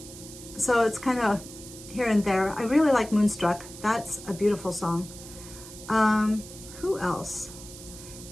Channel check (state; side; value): noise; right; hiss, 15 dB below the sound